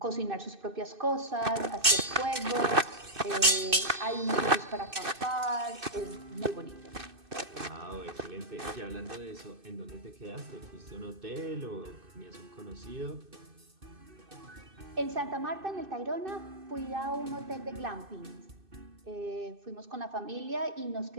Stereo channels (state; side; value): late; left; 2.6 ms